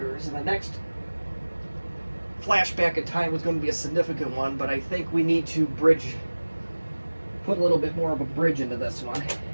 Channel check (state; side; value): inverted; both; correlation -1.00